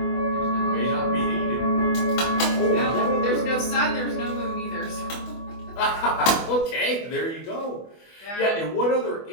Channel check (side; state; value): right; late; 24 ms